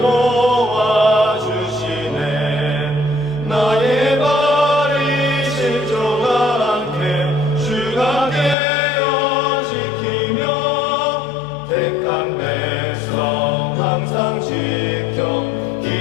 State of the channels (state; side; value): drops out; right; at 8.6 s